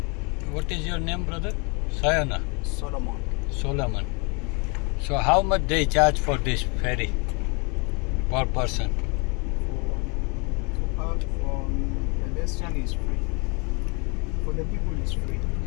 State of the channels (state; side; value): quieter; right; 32.3 dB